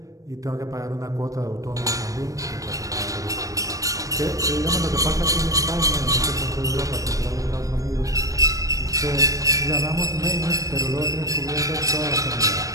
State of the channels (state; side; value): late; left; 0.16 ms